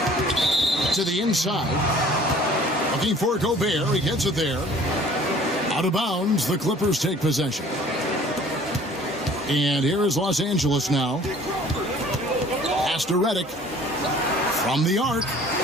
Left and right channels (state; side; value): normal; both; correlation 0.51